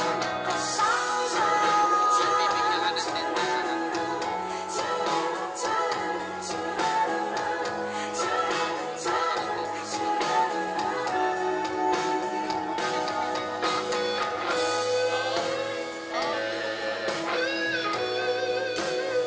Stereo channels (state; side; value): identical; both; correlation 1.00